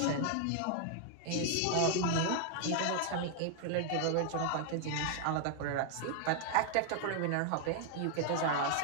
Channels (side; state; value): both; different; correlation 0.00